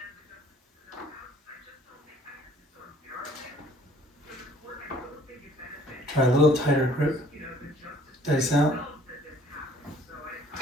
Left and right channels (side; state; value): both; normal; correlation 0.57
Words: Try a little tighter grip. Dice out.